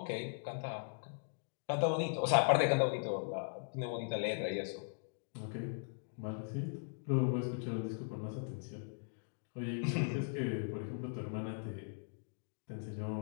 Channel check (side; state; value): right; silent; digital silence